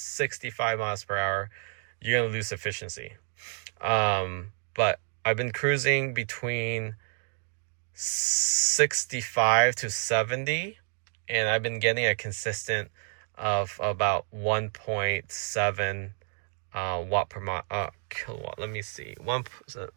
miles per hour, you're going to lose efficiency. But I've been cruising between 65 to 70, and I've been getting a consistent of about 1.7 watt per mile, kilowatt. Let me see, 1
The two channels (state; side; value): silent; left; 58 dB below the other